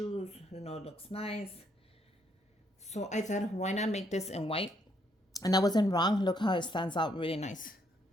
It looks nice. So I thought, why not make this in white? And I wasn't wrong. Look how it stands out really nice.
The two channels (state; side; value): normal; both; correlation 0.72